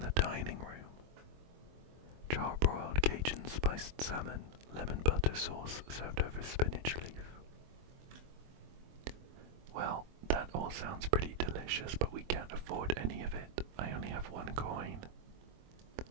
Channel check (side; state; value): left; late; 23 ms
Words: dining room. Charbroiled Cajun spiced salmon, lemon butter sauce served over spinach leaf. Well, that all sounds pretty delicious, but we can't afford any of it. I only have 1 coin.